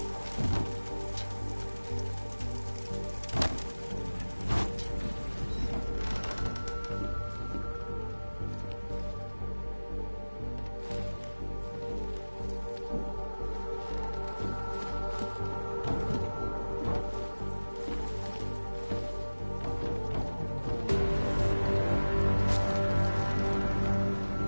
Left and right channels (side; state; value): both; inverted; correlation -1.00